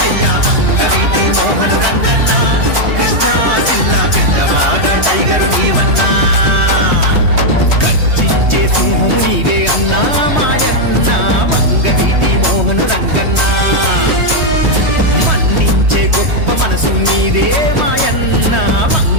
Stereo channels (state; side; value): late; left; 3.2 ms